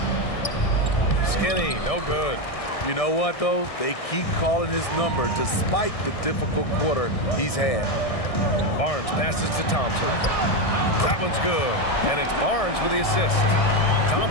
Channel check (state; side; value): late; right; 1.6 ms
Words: Skinny, no good. You know what, though? They keep calling his number despite the difficult quarter he's had. Barnes passes to Thompson. That one's good. And it's Barnes with the assist.